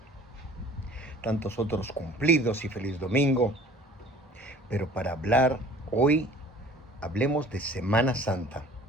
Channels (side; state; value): both; normal; correlation 0.48